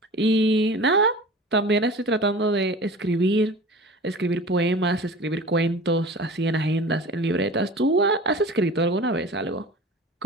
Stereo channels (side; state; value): both; normal; correlation 0.38